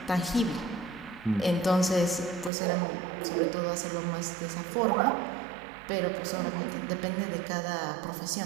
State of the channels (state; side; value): drops out; left; at 2.5 s